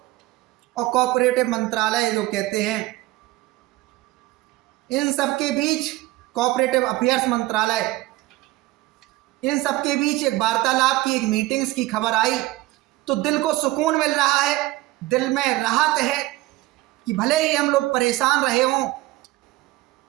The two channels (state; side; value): quieter; left; 18.7 dB